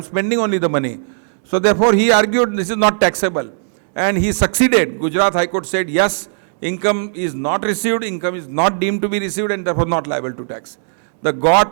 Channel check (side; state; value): left; silent; digital silence